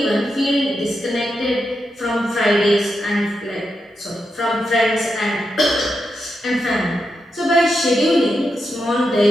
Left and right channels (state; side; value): normal; both; correlation 0.86